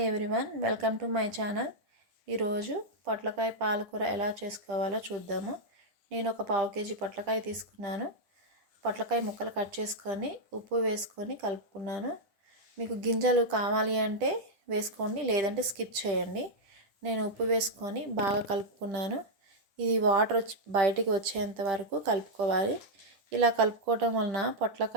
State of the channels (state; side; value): late; left; 10 ms